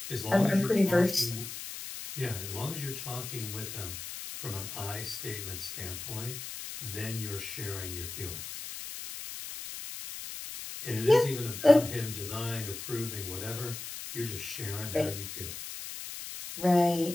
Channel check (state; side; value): noise; left; hiss, 9 dB below the sound